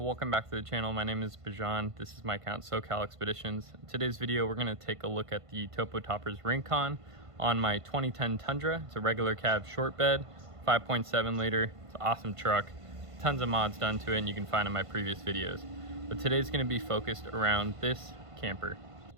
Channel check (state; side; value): late; left; 1.5 ms